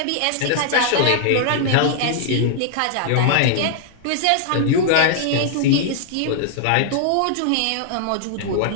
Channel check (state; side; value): different; both; correlation -0.01